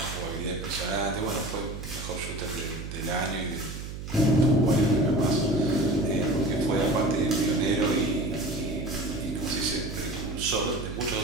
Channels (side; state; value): right; noise; hum, 8 dB below the sound